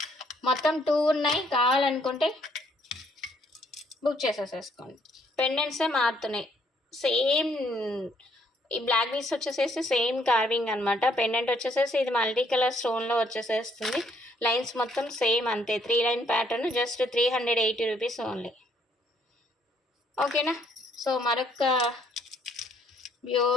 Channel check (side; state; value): both; normal; correlation 0.67